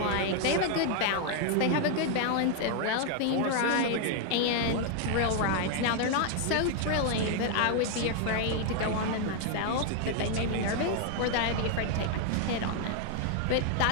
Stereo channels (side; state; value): both; different; correlation 0.00